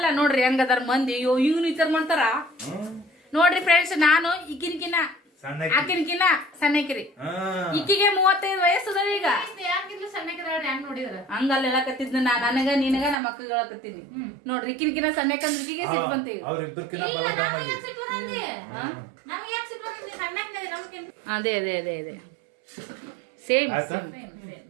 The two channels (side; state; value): left; drops out; at 13.2 s